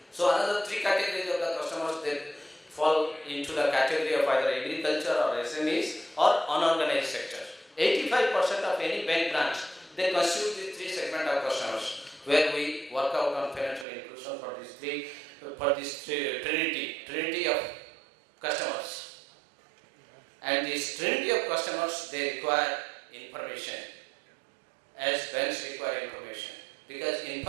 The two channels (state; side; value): drops out; left; at 13.9 s